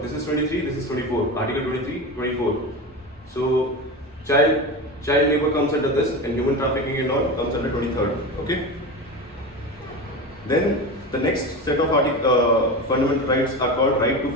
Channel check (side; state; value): both; normal; correlation 0.24